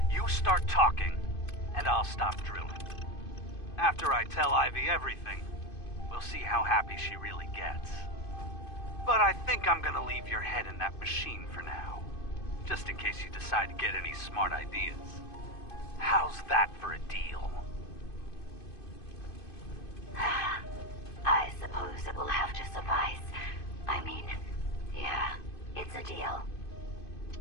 you start talking, and I'll stop drilling. After I tell Ivy everything, we'll see how happy she really gets. But I think I'm gonna leave your head in that machine for now, just in case you decide to get any smart ideas. How's that for a deal? I suppose it will have to suffice. I mean, yeah, it's a deal.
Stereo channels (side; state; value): right; late; 2.5 ms